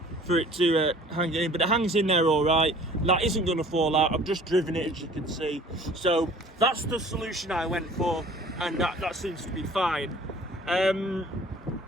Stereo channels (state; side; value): normal; both; correlation 0.50